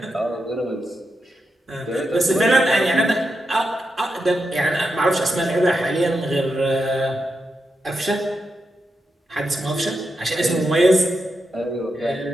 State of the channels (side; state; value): both; normal; correlation 0.86